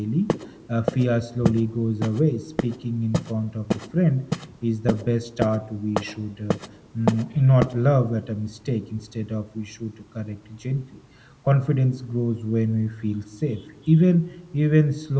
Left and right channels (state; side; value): identical; both; correlation 1.00